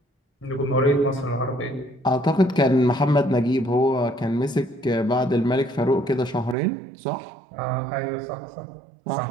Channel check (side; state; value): left; drops out; at 6.6 s